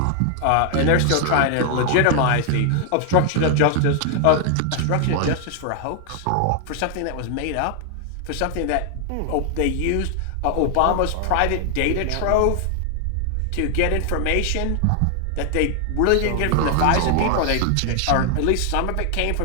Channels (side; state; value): both; different; correlation 0.00